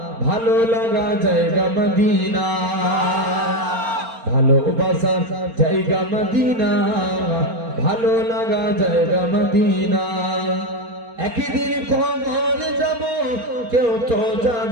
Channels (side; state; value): left; late; 4.3 ms